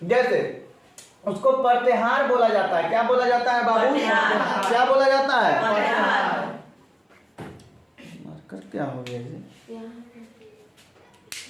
जैसे उसको प्रत्याहार बोला जाता है। क्या बोला जाता है बाबू? क्या बोला जाता है? मार्कर क्या हो गया जी?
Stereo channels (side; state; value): both; identical; correlation 1.00